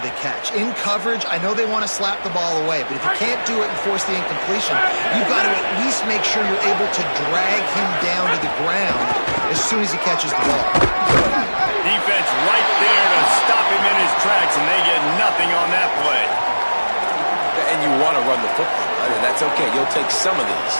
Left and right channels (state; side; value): inverted; both; correlation -1.00